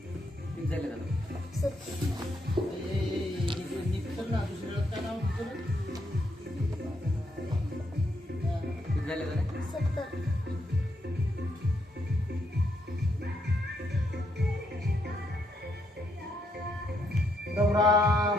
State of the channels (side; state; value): both; normal; correlation 0.77